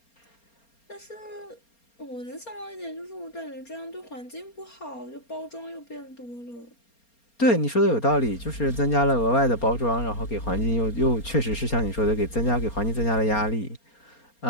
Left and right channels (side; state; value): right; late; 4.3 ms